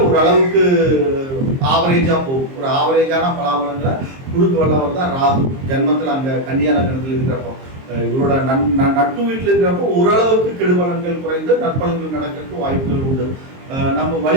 ஒரு அளவுக்கு ஆவரேஜாக போகும். ஒரு ஆவரேஜான பலாபலங்களை கொடுக்க வல்லவர் தான் ராகு. ஜென்மத்தில் அங்கே கன்னியா லக்னத்தில் இருக்கிறப்போ இவரோட நட்பு வீட்டில் இருக்கிறப்போ ஓரளவுக்கு கெடுபலன்கள் குறைந்து நற்பலன்கள் நடக்கிறதுக்கு வாய்ப்புகள் உண்டு. நம்ம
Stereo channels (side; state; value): left; late; 23 ms